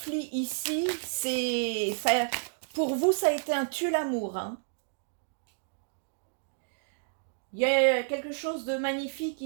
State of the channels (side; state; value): left; silent; digital silence